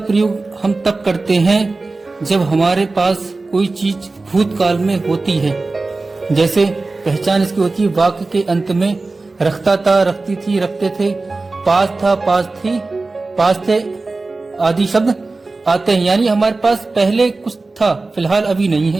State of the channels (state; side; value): quieter; left; 3.5 dB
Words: हम तब करते हैं जब हमारे पास कोई चीज भूतकाल में होती है। जैसे पहचान इसकी होती है वाक्य के अंत में रखता था, रखती थी, रखते थे, पास था, पास थी, पास थे आदि शब्द आते हैं। यानी हमारे पास पहले कुछ था, फिलहाल अभी नहीं